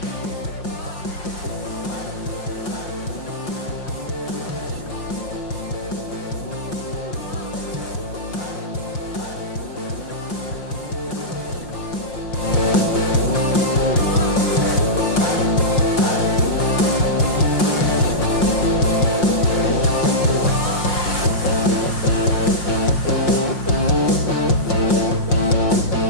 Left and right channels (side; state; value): right; late; 5.6 ms